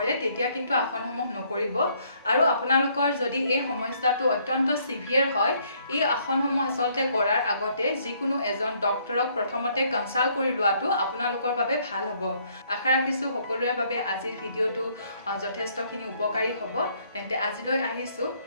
তেতিয়া কিন্তু আসনসমূহ নকৰিব আৰু আপোনালোকৰ যদি এই সমস্যাটো অত্যন্ত সিভিয়াৰ হয় এই আসনসমূহ আসলতে কৰাৰ আগতে যিকোনো এজন ডক্টৰক প্ৰথমতে কনসাল্ট কৰি লোৱাটো আপোনালোকৰ বাবে ভাল হ'ব আশা ৰাখিছো সকলোৰে বাবে আজিৰ ভিডিওটো যথেষ্টখিনি উপকাৰী হ'ব তেন্তে আজিলৈ আহিছো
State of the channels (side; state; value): both; inverted; correlation -0.67